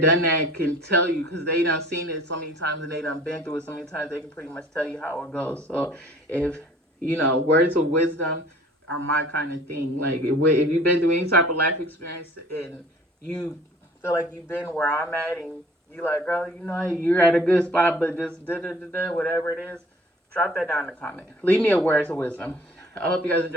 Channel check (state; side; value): normal; both; correlation 0.51